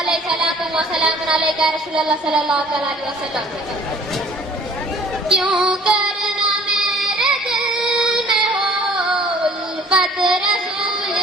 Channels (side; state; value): both; normal; correlation 0.52